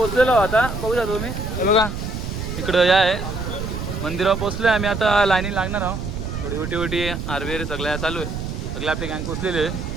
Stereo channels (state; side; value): noise; right; rumble, 5 dB below the sound